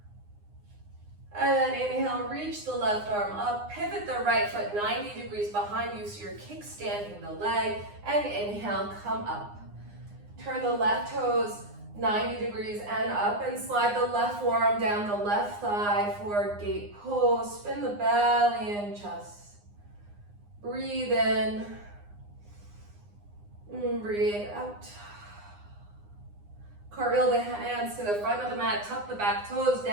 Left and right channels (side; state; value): left; late; 9.7 ms